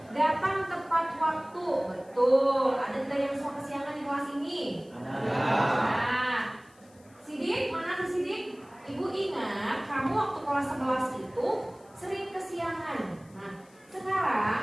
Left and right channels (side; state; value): left; noise; hiss, 30 dB below the sound